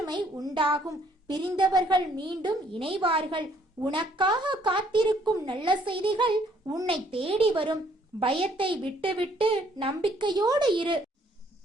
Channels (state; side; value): normal; both; correlation 0.64